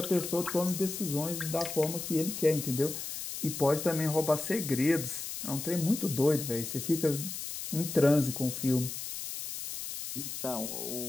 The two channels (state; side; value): noise; left; hiss, 6 dB below the sound